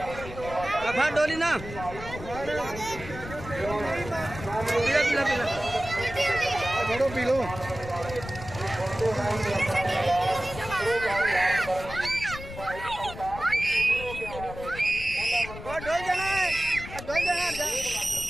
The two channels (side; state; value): left; noise; rumble, 12 dB below the sound